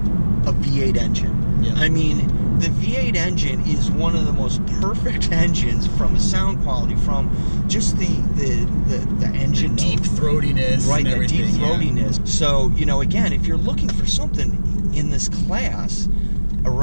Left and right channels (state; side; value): inverted; both; correlation -1.00